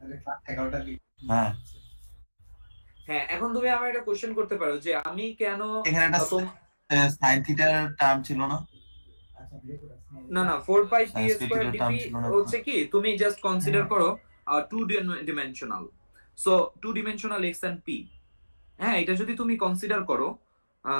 ক্লাস 11টা হ্যাঁ হ্যাঁ, এখন তুমি আমার একটা কোশ্চেন করতে পারো যে আমি কেন এখানে একটা সাইন থিটার টার্ম ছিল না? না না 4 pi P Science square critical term DP ছিল না? হচ্ছে কি, তুমি জাস্ট কনসিডার করো two dimensional. So two dimensional X and P, হ্যাঁ, এটা যদি তুমি কনসিডার করো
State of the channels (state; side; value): inverted; both; correlation -1.00